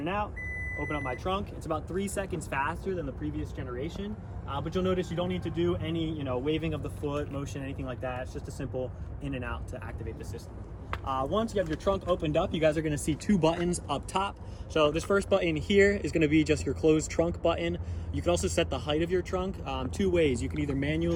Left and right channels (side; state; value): both; identical; correlation 1.00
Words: out. Open up my trunk. It's about 3 seconds faster than the previous generation, but you'll notice you don't need to do any, waving of the foot motion, anything like that. It's just a simple in and out to activate the system. Once you have your trunk opened up, you guys are going to see 2 buttons up top. So this first button here is going to be just your closed trunk button. You can also set the height of your trunk 2 ways. You can either